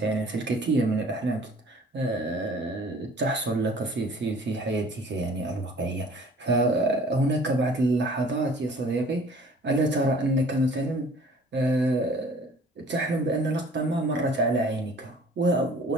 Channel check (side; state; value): both; normal; correlation 0.51